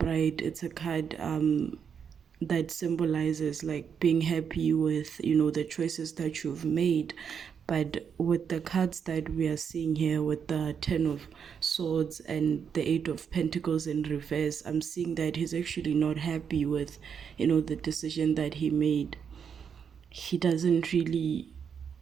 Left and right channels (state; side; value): quieter; left; 7.2 dB